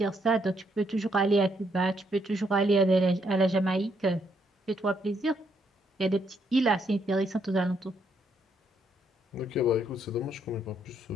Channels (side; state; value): both; normal; correlation 0.74